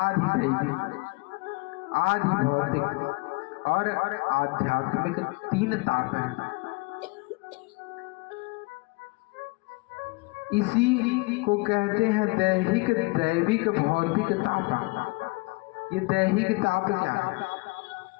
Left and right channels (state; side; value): quieter; right; 27.2 dB